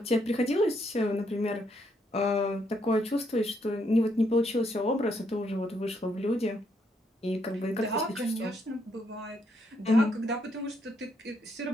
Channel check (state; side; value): normal; both; correlation 0.75